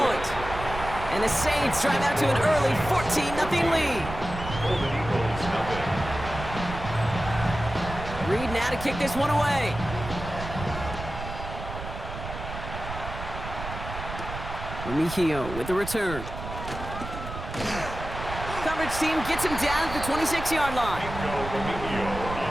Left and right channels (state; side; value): noise; right; rumble, 9 dB below the sound